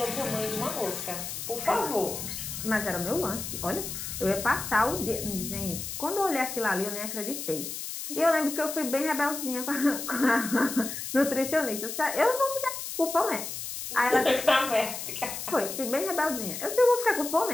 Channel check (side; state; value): left; noise; hiss, 6 dB below the sound